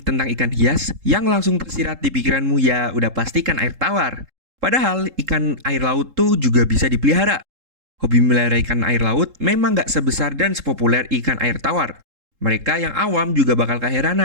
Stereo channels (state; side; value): late; left; 3.7 ms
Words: tentang ikan hias, yang langsung tersirat di pikiranmu ya udah pasti ikan air tawar. Padahal ikan air laut tuh juga bisa dipelihara. Hobi melihara ikan air laut memang nggak sebesar dan sepopuler ikan air tawar. Mereka yang awam juga bakal